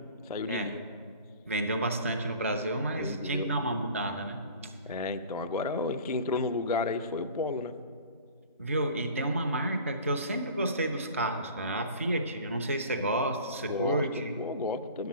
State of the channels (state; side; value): inverted; both; correlation -0.43